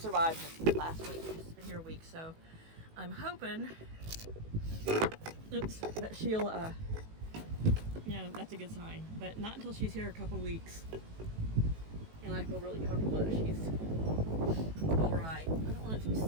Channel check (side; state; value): left; late; 18 ms